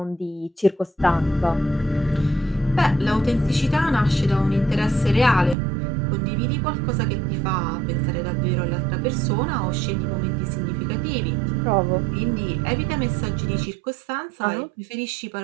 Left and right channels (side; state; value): left; drops out; at 5.6 s